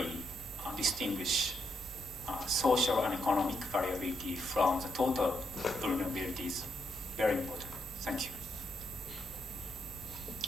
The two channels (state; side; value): normal; both; correlation 0.77